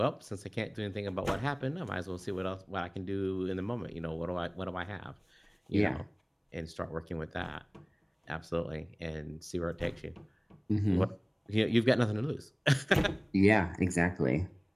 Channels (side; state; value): both; identical; correlation 1.00